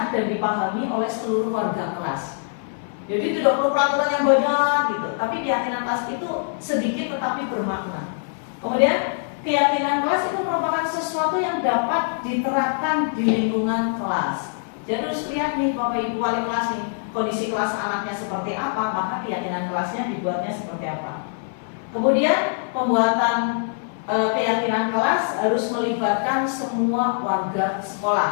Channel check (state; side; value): silent; right; 57 dB below the other